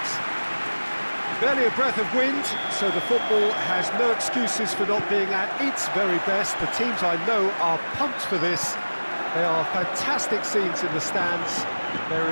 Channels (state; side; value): inverted; both; correlation -1.00